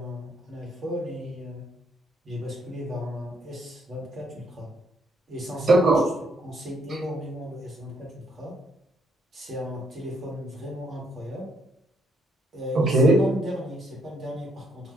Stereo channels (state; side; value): normal; both; correlation 0.71